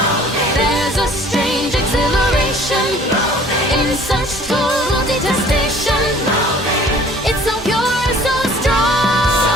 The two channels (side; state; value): both; normal; correlation 0.52